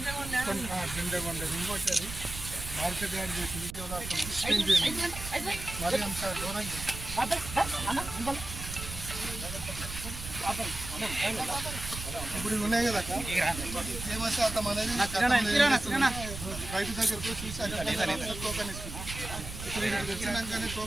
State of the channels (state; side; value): noise; right; rumble, 9 dB below the sound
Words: వరకు ఇంకోటి అది మార్కెట్ యాడ్ చేసి మరి అంత దూరంగా ఇప్పుడు ఉన్నాయి కదా తేమ శాతం అనేది రైతు దగ్గరకు చూసి టోకన్ ఇస్తుంది. ఇప్పుడు ఇక్కడికి వచ్చినాకనే